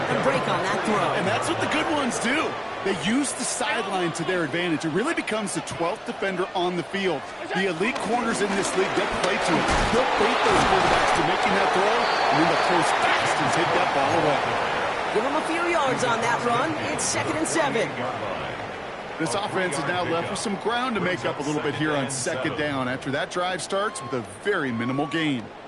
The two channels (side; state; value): both; identical; correlation 1.00